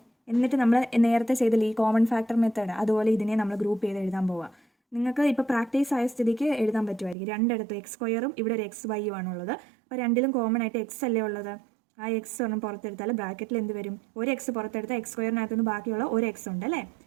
എന്നിട്ട് നമ്മൾ നേരത്തെ ചെയ്തില്ല ഈ കോമൺ ഫാക്ടർ മെത്തേഡ്, അതുപോലെ ഇതിനെ നമ്മൾ ഗ്രൂപ്പ് ചെയ്ത് എഴുതാൻ പോവുക. നിങ്ങൾക്ക് ഇപ്പോൾ പ്രാക്ടീസ് ആയ സ്ഥിതിക്ക് എഴുതാൻ പറ്റുമായിരിക്കും. രണ്ടിടത്തും x² ഇവിടെ ഒരു xy ആണുള്ളത്. അപ്പോൾ രണ്ടിലും കോമൺ ആയിട്ട് x അല്ലേ ഉള്ളത്. ആ എക്സ് ഒന്നും പുറത്തെടുത്താൽ ബ്രാക്കറ്റിൽ എന്ത് വരും, ഒരു എക്സ് പുറത്തെടുത്താൽ x²-നകത്തുനിന്ന് ബാക്കിയുള്ള ഒരു എക്സ് ഉണ്ട് അല്ലേ.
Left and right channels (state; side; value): drops out; left; at 7.2 s